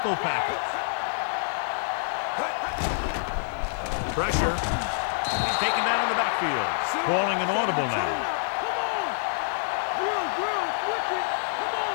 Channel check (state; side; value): silent; right; digital silence